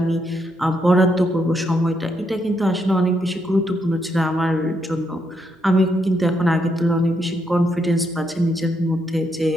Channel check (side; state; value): both; normal; correlation 0.78